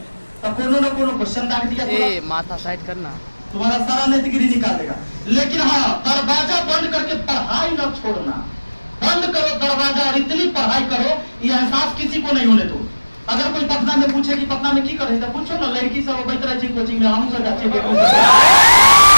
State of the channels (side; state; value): both; inverted; correlation -1.00